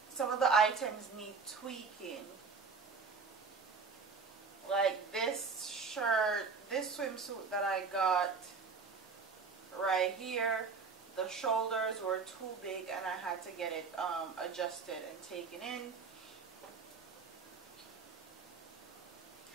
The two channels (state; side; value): quieter; left; 5.0 dB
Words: of the items need tweaking. Like this shirt, this swimsuit that I got right here. The shoulders were too big and I had to get it adjusted and taken in.